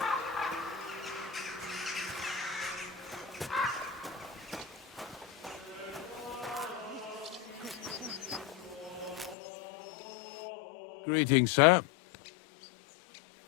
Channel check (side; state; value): right; drops out; at 9.3 s